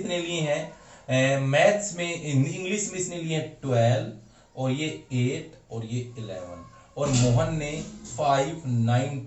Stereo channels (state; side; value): identical; both; correlation 1.00